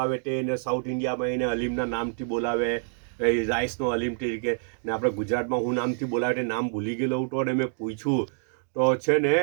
તે એને સાઉથ ઇન્ડિયામાં એને હલીમના નામથી બોલાવે રાઈસનો હલીમ તરીકે ને આપણે ગુજરાતમાં હું નામથી બોલાવે તે નામ ભૂલી ગયેલો હતો અને મેં પૂછ્યું તો છે ને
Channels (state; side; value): silent; left; digital silence